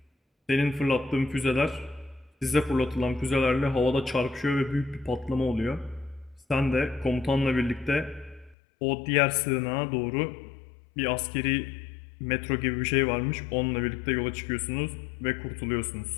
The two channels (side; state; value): right; drops out; at 8.6 s